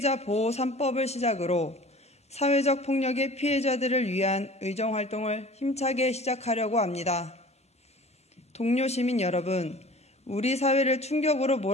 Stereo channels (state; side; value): normal; both; correlation 0.44